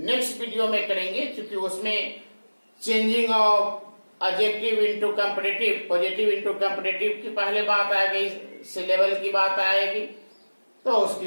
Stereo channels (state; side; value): inverted; both; correlation -1.00